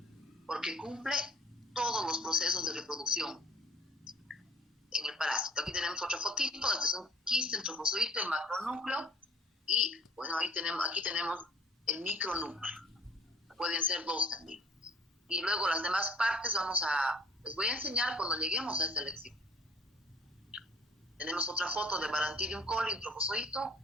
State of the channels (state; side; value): normal; both; correlation 0.52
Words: porque cumple todos los procesos de reproducción en el parásito. Aquí tenemos otra fotito, este es un quiste, un trofozoito, el macronúcleo, y bueno, aquí tenemos el micronúcleo. Pueden ser dos también. Y luego las demás partes les voy a enseñar cuando lleguemos a esta lección. Tenemos otra foto de Balantidium coli, un trofozoito.